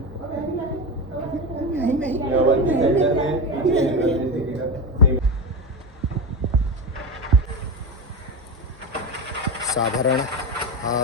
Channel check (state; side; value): normal; both; correlation 0.20